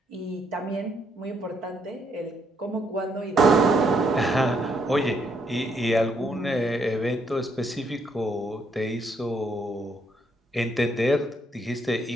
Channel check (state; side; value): normal; both; correlation 0.73